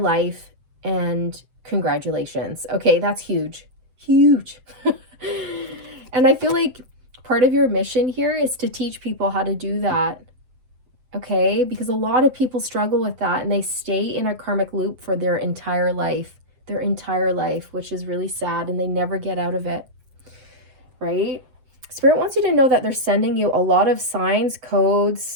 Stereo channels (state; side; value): late; left; 7.8 ms